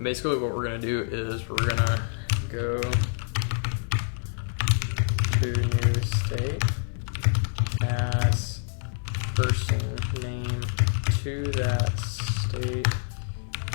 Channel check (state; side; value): silent; right; 60 dB below the other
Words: Basically what we're gonna do is we're gonna go to new state, pass person name to that state,